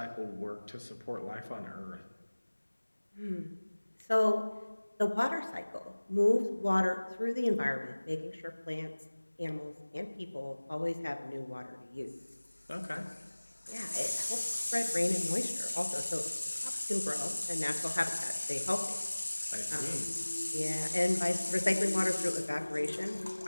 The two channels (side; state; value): both; inverted; correlation -1.00